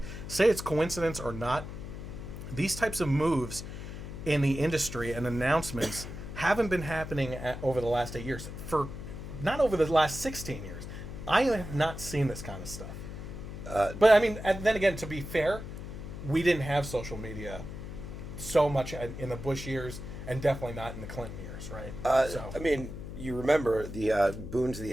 say it's coincidence or not, these types of moves in the industry and announcements haven't been happening over the last 8 years. Not over the last 16 years. I have not seen this kind of stuff. But I mean, and then again, to be fair, we didn't have social media so much in the Bush years, and definitely not in the Clinton years, right? I mean, you remember the boon to the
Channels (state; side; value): noise; left; hum, 9 dB below the sound